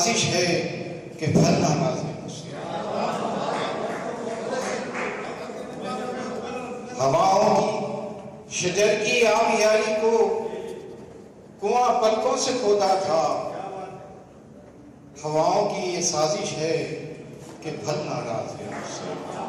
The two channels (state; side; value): identical; both; correlation 1.00